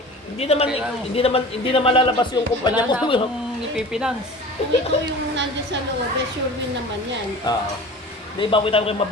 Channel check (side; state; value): both; normal; correlation 0.39